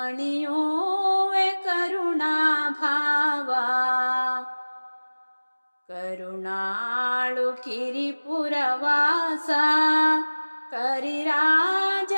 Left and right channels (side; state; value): both; inverted; correlation -1.00